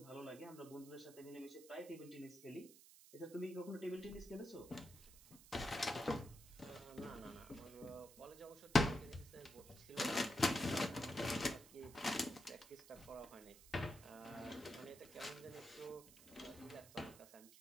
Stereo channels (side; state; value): right; noise; hiss, 19 dB below the sound